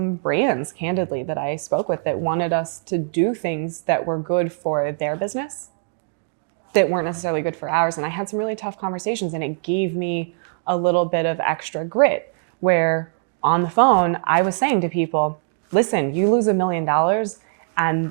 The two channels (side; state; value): left; silent; digital silence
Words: brands, candidly, that I spoke with that wanted us to do things that were good for their business, that weren't necessarily good for ours. And I had some really tough conversations, and it gave me a little bit of extra grit where on the phone, I was saying to people, listen, you lose $1 million and